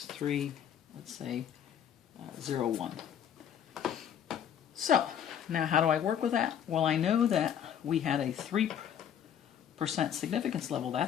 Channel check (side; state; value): right; quieter; 9.1 dB